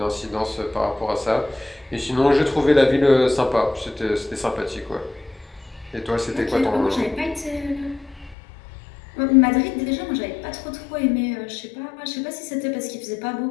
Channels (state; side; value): drops out; right; at 8.3 s